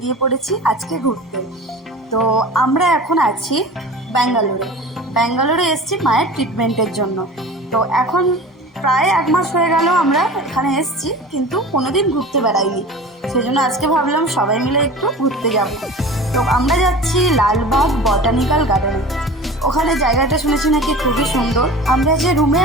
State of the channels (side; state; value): both; normal; correlation 0.37